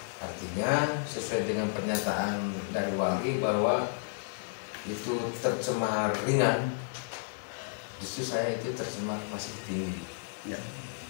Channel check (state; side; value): silent; right; 56 dB below the other